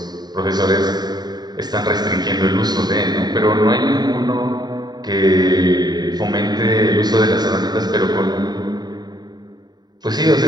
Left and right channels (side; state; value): left; late; 0.20 ms